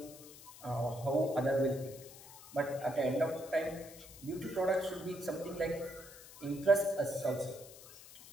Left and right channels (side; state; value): left; noise; hiss, 17 dB below the sound